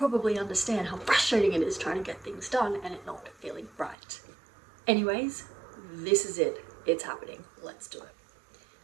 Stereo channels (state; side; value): drops out; left; at 4.0 s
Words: understand how frustrating it is trying to get things done and it not feeling right. Anyways, this is it. It's happening. Let's do it.